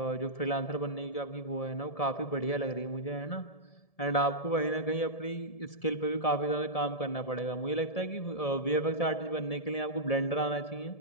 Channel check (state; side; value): late; right; 1.7 ms